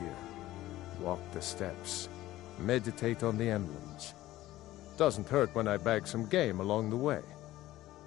Walk the steps. Meditate on the emblems. Doesn't hurt when I bag some game along the way.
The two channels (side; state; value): right; quieter; 15.7 dB